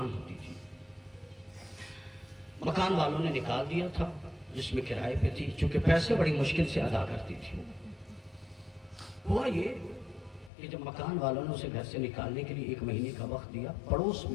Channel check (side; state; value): right; drops out; at 10.5 s